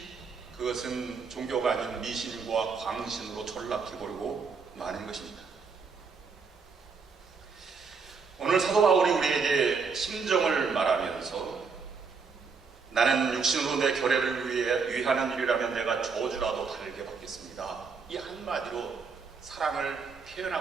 그것은 종교가 아닌 미신과 광신으로 전락해버리고 마는 것입니다. 오늘 사도 바울이 우리에게 심정을 말하면서 나는 육신으로 내 결례를 위하는 일이라면 내가 저주라도 달게 받겠습니다, 이 한마디로 사랑을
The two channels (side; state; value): left; quieter; 5.2 dB